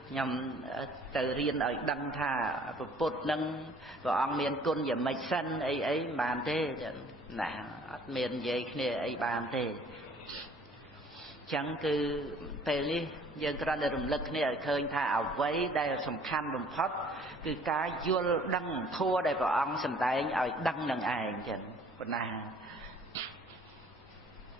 nhằm từ riêng ở đăng thà bột nâng và ông miền côn và mạch xanh ấy bàn thế nè miền vậy kia ấy bàn thế chẳng cứ tề li dân ra để rùng lực này khơi thà ở với đây là sầm khăn bầm phất cứ cá vô đăng thua đây vào ông sầm tay ở đăng nâng ai chẳng còn nà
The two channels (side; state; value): both; normal; correlation 0.55